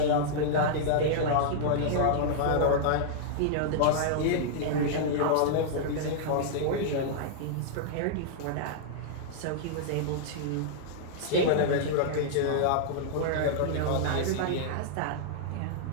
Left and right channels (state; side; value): different; both; correlation -0.02